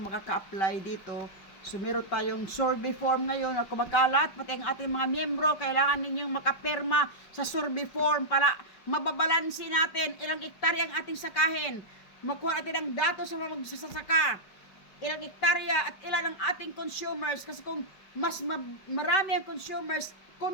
dito. So, meron tayong survey form ngayon na kumakalat, pati ang ating mga miyembro, kailangan ninyong makapirma sa survey form para mababalansin natin ilang hektarya ang ating sakahin. Makuha natin ang datos sa mga magsasaka, ilang hektarya at ilan ang ating consumers. Kasi kung mas marami ang consumers,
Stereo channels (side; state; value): right; late; 5.2 ms